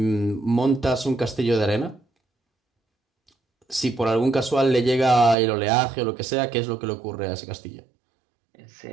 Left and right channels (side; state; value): left; drops out; at 5.4 s